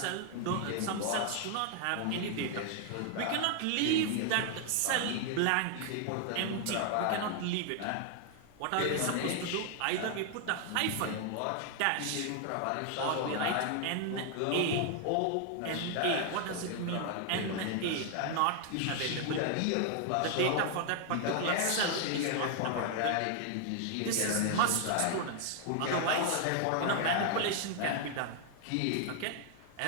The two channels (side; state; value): both; different; correlation 0.00